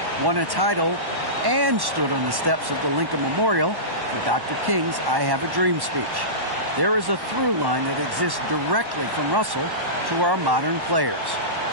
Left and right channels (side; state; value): left; late; 1.1 ms